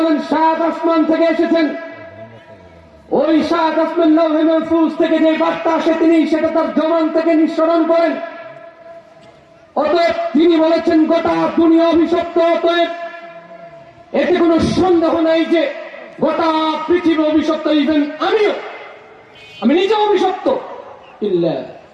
সাত আসমান থেকে এসেছেন। ওই সাত আসমান লৌহে মাহফুজ থেকে যে বার্তা আসে তিনি সেটা তার জবান থেকে নিঃসরণ করেন। অতএব তিনি বলেছেন গোটা দুনিয়া অভিশপ্ত। অতএব এতে কোনো সন্দেহ নাই যে গোটা পৃথিবী অভিশপ্ত, ইভেন আমি নিজে অভিশপ্ত। ইল্লা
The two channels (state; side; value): identical; both; correlation 1.00